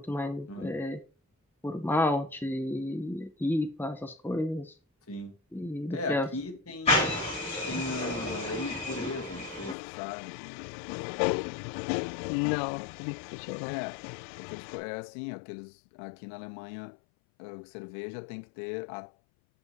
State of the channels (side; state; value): right; drops out; at 9.8 s